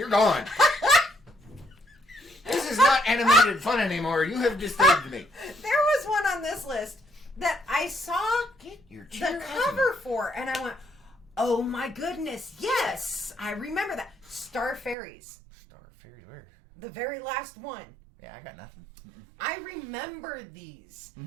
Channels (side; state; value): left; drops out; at 15.0 s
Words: gone. This is not animated fun anymore. You have disturbed me. There was one on this list that I saw Get your chair the out of cover for, and I went, oh my goodness, yes, I remember that. Star Fairies. Star Fairies, where? The very last one. Yeah, I got nothing. I remember these,